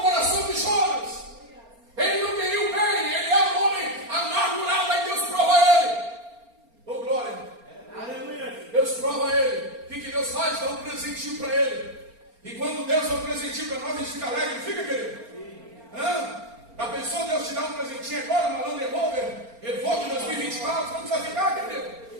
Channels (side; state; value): left; late; 4.3 ms